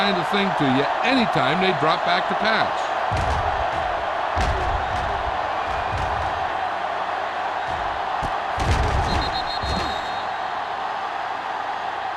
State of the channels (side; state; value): both; identical; correlation 1.00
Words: of thing to you anytime they drop back to pass.